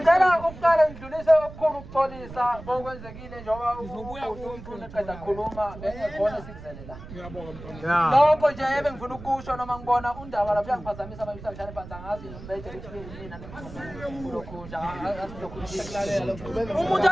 ukuqala ngidlulise okukhulu ukuxolisa okwenzekile njengoba umuntu eqeda khuluma ekhona sikuzelela. Lokho nje ebengifuna ukusho noma ngibona undaba lapha yangiphazamisa abamisa bishane phansi angazi nombethe ukuthi mina lokho nje umuntu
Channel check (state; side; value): noise; right; rumble, 14 dB below the sound